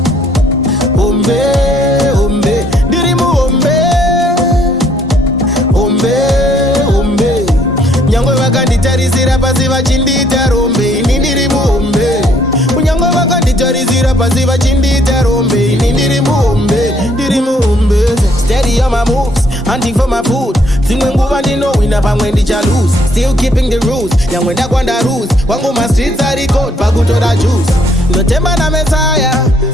hombe, hombe, Ndirimuhombe, hombe, hombe. Nyangwe vakanditarisira pasi vachindita rombe, ini Ndirimuhombe. Nyangwe vakanditarisira pasi vachindita rombe, ini Ndirimuhombe, Ndirimuhombe. Steady on my moves, hunting for my food. Zimwe nguva ndinowina pamwe ndicha lose. Still keeping the rules, nyangwe ndakwanda rules. Wangu ma streets are record, pakutora juice. Notemba na Messiah,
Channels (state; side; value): normal; both; correlation 0.66